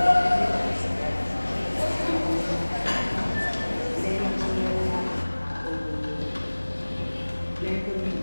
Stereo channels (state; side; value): inverted; both; correlation -1.00